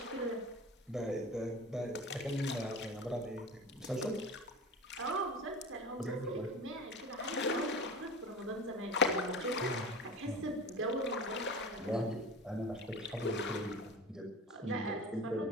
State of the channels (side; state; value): both; normal; correlation 0.32